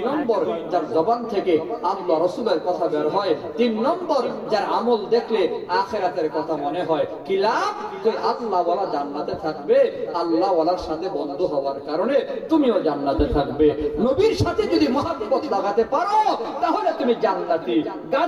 নম্বর, যার জবান থেকে আল্লাহ রাসূলের কথা বের হয়। তিন নম্বর, যার আমল দেখলে আখিরাতের কথা মনে হয়। কি লাভ? তুই আল্লাহ ওয়ালা জান্নাতে থাকবে। আল্লাহ ওয়ালার সাথে বন্ধু হওয়ার কারণে তুমিও জান্নাতে থাকবে। নবীর সাথে যদি মহব্বত লাগাতে পারো তাহলে তুমি জান্নাতি।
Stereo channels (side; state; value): both; identical; correlation 1.00